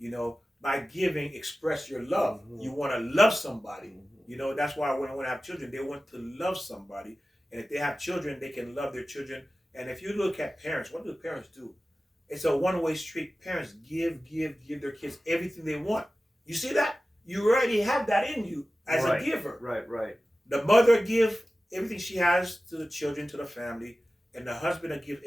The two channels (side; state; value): both; normal; correlation 0.95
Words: know, by giving, express your love. You want to love somebody. You know, that's why when I have children, they want to love somebody. And if they have children, they can love their children. And if you look at parents, what do parents do? It's a one-way street. Parents give their kids everything they want. You see that? You already have that in you as a giver. Right. The mother gives everything she has to the children, to the family. And the husband will give